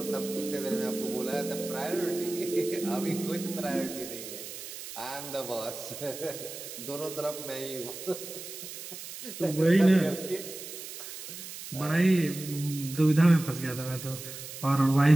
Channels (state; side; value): noise; right; hiss, 11 dB below the sound